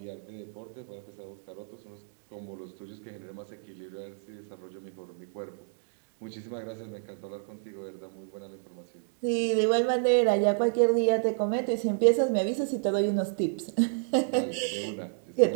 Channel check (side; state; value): left; silent; digital silence